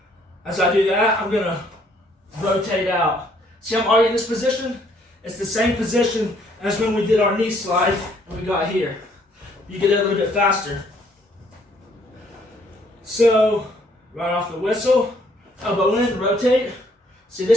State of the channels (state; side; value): normal; both; correlation 0.65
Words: As I do that, I'm going to rotate out. See, I'm already in this position. It's the same position as when we did our knee slide and we got here. You get it a little bit faster. So, right off the whistle, elbow in, rotate. See